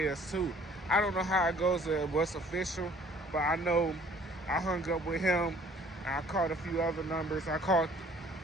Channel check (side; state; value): both; normal; correlation 0.56